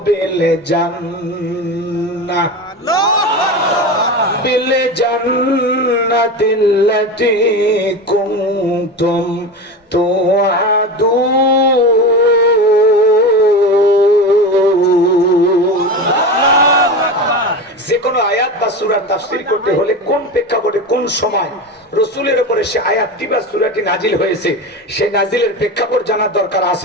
التي كنتم توعدون। যে কোনো আয়াত বা সূরার তাফসীর করতে হলে কোন প্রেক্ষাপটে কোন সময় রাসূলের উপরে সে আয়াতটি বা সূরাটি নাজিল হয়েছে সেই নাজিলের প্রেক্ষাপট জানার দরকার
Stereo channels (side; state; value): both; normal; correlation 0.25